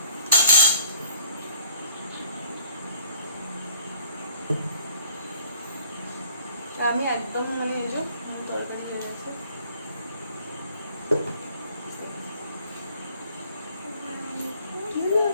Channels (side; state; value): both; inverted; correlation -0.56